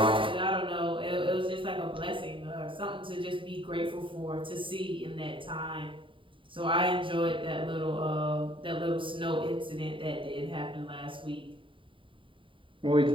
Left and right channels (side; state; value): left; late; 0.25 ms